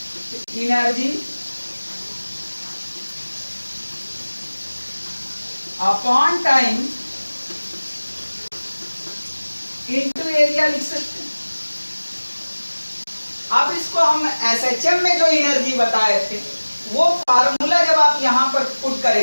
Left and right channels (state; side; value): inverted; both; correlation -1.00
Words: energy upon time into area लिख सकते हैं। अब इसको हम SHM में जो एनर्जी बताए थे वो फार्मूला जब आप यहां पर पुट